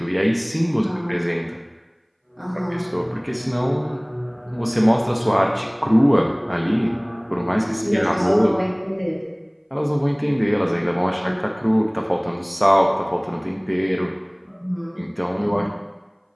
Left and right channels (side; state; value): both; identical; correlation 1.00